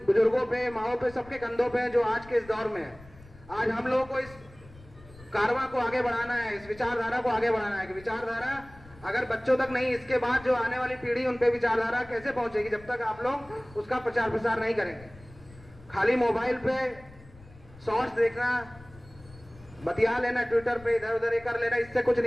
बुजुर्गों पे, माओ पे, सबके कंधों पे है, जो आज के इस दौर में है। आज हम लोगों को इस कारवां को आगे बढ़ाना है, इस विचारधारा को आगे बढ़ाना है कि विचारधारा अगर बच्चों तक नहीं, इसके बाद जो आने वाली पीढ़ी, उन पे विचारधारा कैसे पहुंचेगी जब तक आप लोग उसका प्रचार प्रसार नहीं करेंगे। खाली मोबाइल पे शॉर्ट्स देखना, बतिया लेना, ट्विटर पे इधर उधर कर लेना, इससे कुछ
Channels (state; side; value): noise; left; rumble, 21 dB below the sound